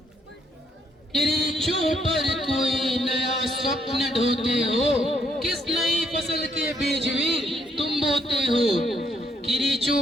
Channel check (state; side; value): normal; both; correlation 0.71